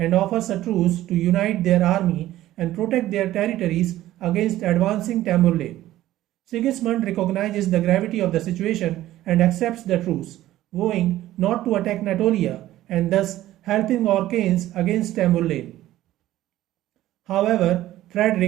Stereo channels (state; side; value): quieter; left; 14.5 dB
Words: offers a truce to unite their army and protect their territories against advancing Tamburlaine. Sigismund recognizes the gravity of the situation and accepts the truce, vowing not to attack Natolia and thus helping Orcanes against Tamburlaine. However,